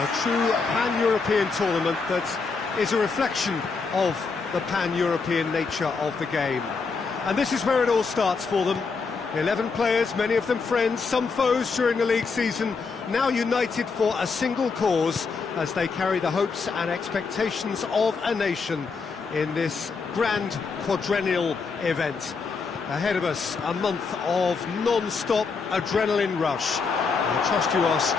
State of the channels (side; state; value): right; quieter; 4.8 dB